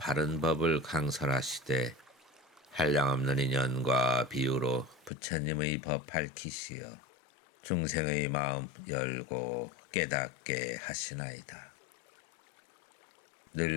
법을 강설하시되 한량없는 인연과 비유로 부처님의 법 밝히시어 중생의 마음 열고 깨닫게 하시나이다.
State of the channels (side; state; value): right; drops out; at 5.1 s